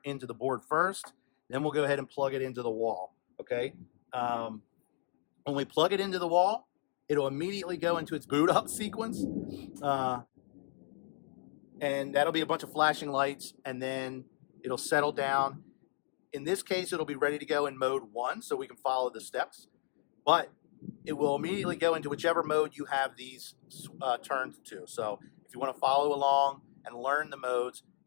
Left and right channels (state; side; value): silent; right; digital silence